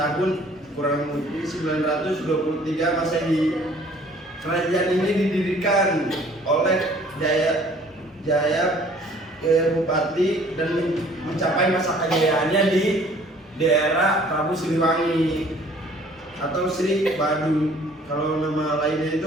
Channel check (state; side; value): normal; both; correlation 0.55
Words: kurang lebih 923 Masehi. Kerajaan ini didirikan oleh Jaya Bupati dan mencapai masa kejayaannya di daerah Prabu Siliwangi atau Sri Badu. Kalau nama lainnya